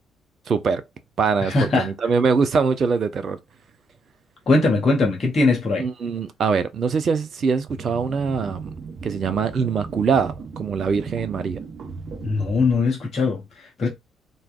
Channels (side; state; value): both; normal; correlation 0.75